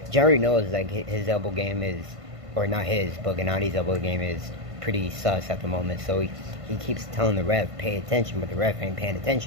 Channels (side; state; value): left; late; 1.5 ms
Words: Jerry knows like his elbow game is, or not his, but Genadi's elbow game is pretty sus at the moment. So he keeps telling the ref, pay attention, but the ref ain't paying